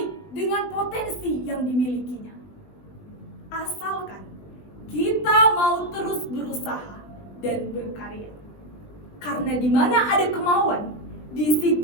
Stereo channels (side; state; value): right; late; 20 ms